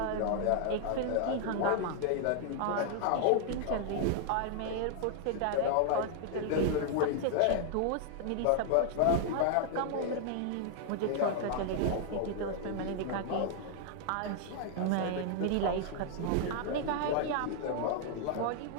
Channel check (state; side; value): different; both; correlation 0.00